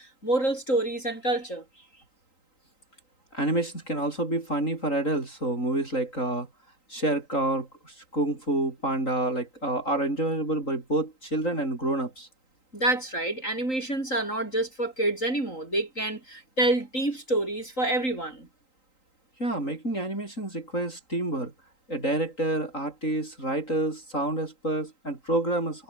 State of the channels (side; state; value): right; late; 3.8 ms